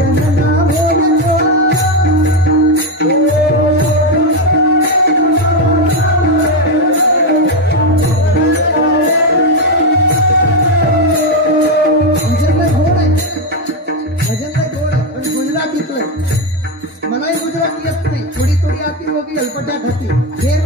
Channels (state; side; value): normal; both; correlation 0.07